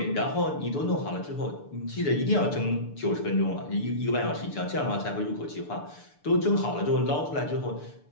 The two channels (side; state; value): right; late; 6.8 ms